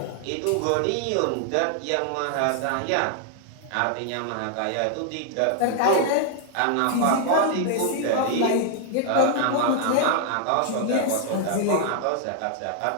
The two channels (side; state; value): both; different; correlation 0.00